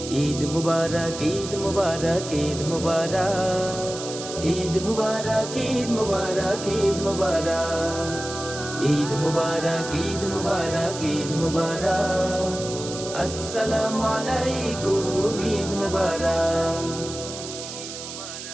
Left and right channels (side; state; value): right; noise; hiss, 10 dB below the sound